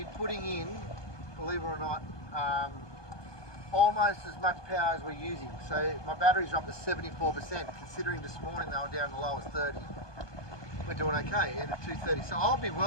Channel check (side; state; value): right; late; 1.2 ms